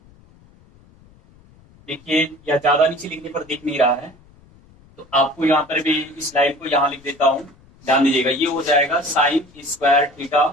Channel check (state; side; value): noise; left; rumble, 28 dB below the sound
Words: देखिए या ज्यादा नीचे लिखने पर दिख नहीं रहा है तो आपको यहाँ पर भी इस लाइन को यहाँ लिख देता हूं, ध्यान दीजिएगा। ये हो जाएगा साइन स्क्वायर थीटा